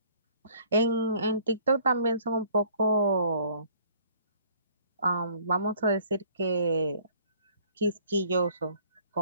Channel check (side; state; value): both; inverted; correlation -0.57